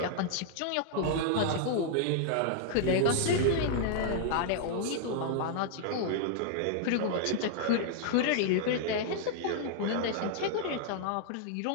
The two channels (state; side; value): different; both; correlation -0.01